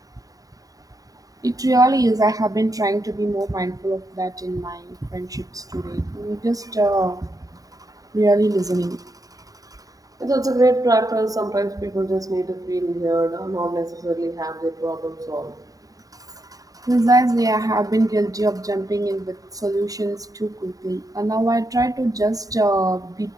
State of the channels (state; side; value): late; left; 0.17 ms